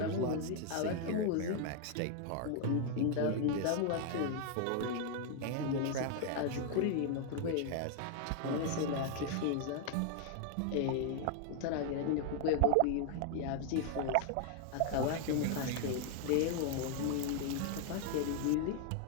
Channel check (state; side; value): different; both; correlation 0.00